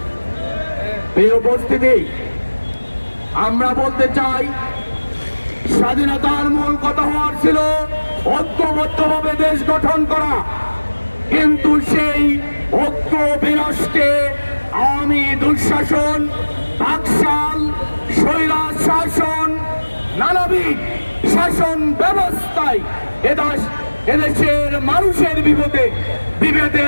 এই উপস্থিতি আমরা বলতে চাই, স্বাধীনতার মূল কথা হওয়ার ছিল ঐক্যবদ্ধভাবে দেশ গঠন করা, কিন্তু সেই ঐক্য বিনষ্টে আওয়ামী দুঃশাসন, বাকশাল, স্বৈরাচার শাসন, নানাবিধ শাসন ব্যবস্থায় এদেশের মানুষের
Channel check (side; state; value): both; inverted; correlation -1.00